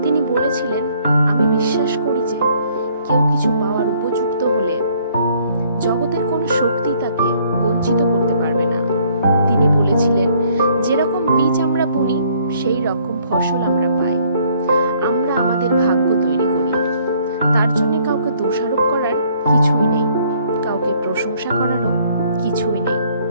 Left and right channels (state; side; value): inverted; both; correlation -0.63